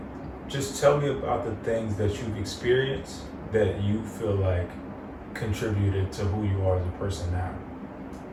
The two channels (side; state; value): both; identical; correlation 1.00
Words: just tell me about the things that you've experienced that you feel like contributed to who you are as a person now.